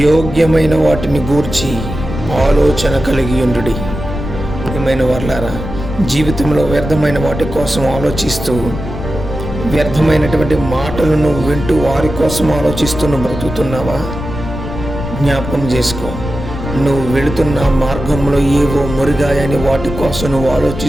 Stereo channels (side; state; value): left; noise; rumble, 8 dB below the sound